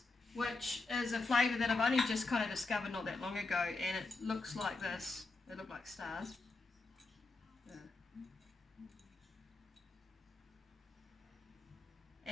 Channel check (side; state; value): right; quieter; 3.6 dB